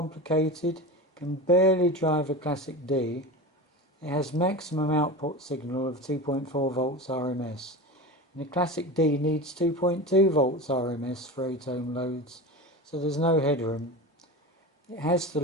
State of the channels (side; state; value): both; normal; correlation 0.28